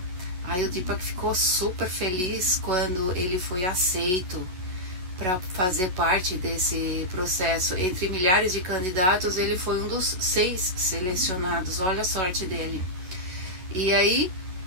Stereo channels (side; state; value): left; late; 11 ms